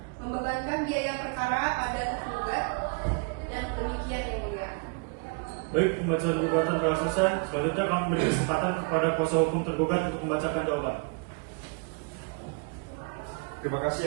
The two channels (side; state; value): left; quieter; 34.2 dB